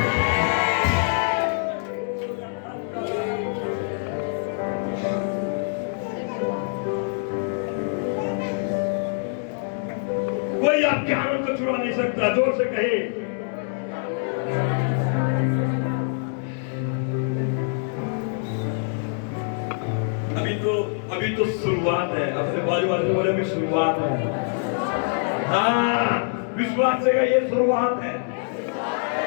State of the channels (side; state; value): right; silent; 60 dB below the other